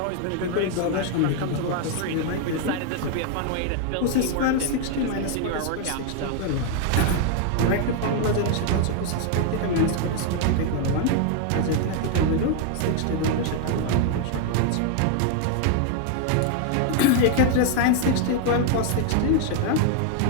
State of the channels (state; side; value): different; both; correlation 0.00